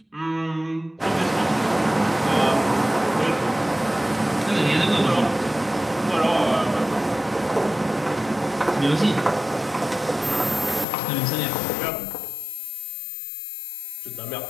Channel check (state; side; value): drops out; right; at 10.9 s